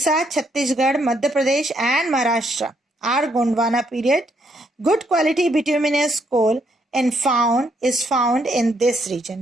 Chhattisgarh, Madhya Pradesh and Maharashtra are Gondwana period. Good quality bituminous coal and is found in this region.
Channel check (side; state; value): both; normal; correlation 0.73